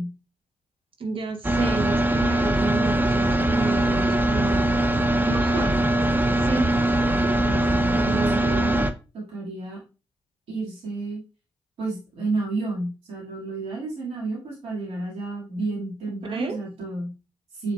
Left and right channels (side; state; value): both; normal; correlation 0.85